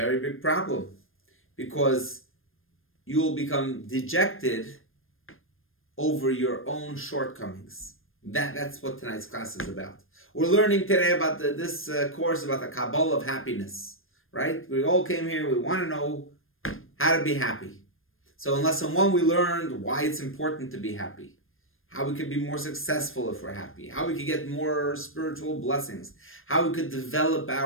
big problem. Because you will become dejected over your own shortcomings. That's what tonight's class is about. We're learning today about this course about the Kabbalah of happiness. Right? We all came here, we want to know how to be happy. So in lesson 1 we learned why it's important to be happy. How we could be more successful if we're happy. How we could get more spiritual blessings. How we could develop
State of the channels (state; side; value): late; right; 0.60 ms